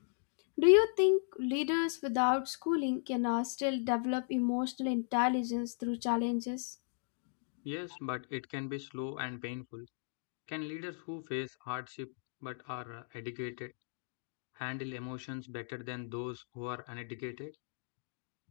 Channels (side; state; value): right; silent; digital silence